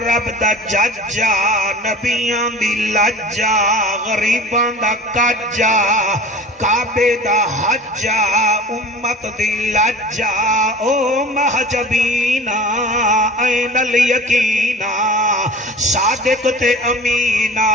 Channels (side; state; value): both; normal; correlation 0.40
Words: دا ججا نبیان دی لجا غریبان دا کجا کعبے دا حجا امت دی لجا او محجبینا این الیقینا صادق تے امینا